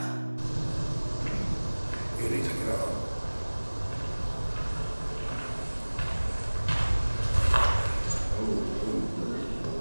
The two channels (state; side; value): inverted; both; correlation -1.00